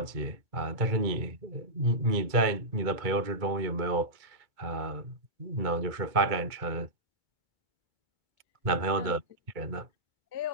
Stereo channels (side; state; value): left; late; 2.2 ms